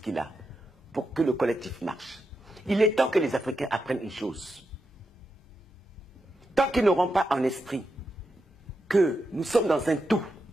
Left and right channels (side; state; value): both; normal; correlation 0.86